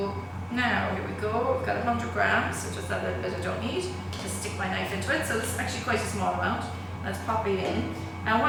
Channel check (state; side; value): identical; both; correlation 1.00